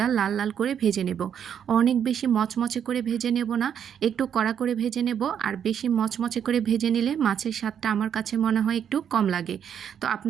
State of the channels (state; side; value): quieter; left; 8.5 dB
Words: লাল লাল করে ভেজে নেব। অনেক বেশি মচমচে করে ভেজে নেব না, একটু কড়া করে ভেজে নেব। আর বেশি মচমচে করে ভেজে নিলে মাছের স্বাদটা আমার কাছে মনে হয় একটু কম লাগে। তো